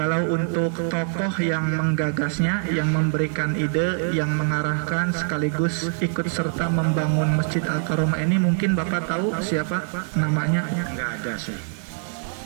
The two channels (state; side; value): silent; left; 56 dB below the other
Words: untuk tokoh yang menggagasnya, yang memberikan ide, yang mengarahkan sekaligus ikut serta membangun Masjid Al-Karomah ini, mungkin Bapak tahu siapa namanya? Enggak ada sih.